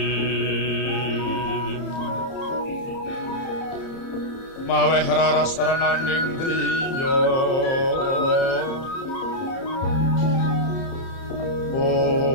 maweh raras renaning driya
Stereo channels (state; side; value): late; right; 30 ms